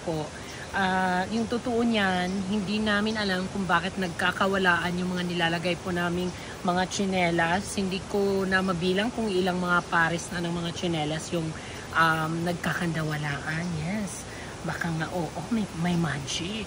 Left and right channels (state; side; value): identical; both; correlation 1.00